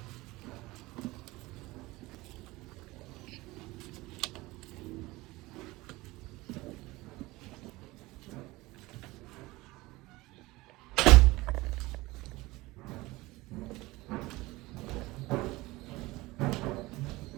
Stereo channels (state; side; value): quieter; left; 20.4 dB